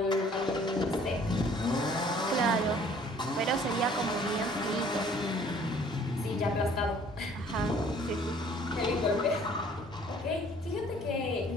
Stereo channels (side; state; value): both; normal; correlation 0.56